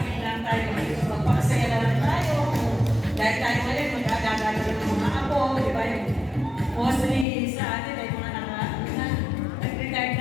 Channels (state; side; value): drops out; right; at 7.2 s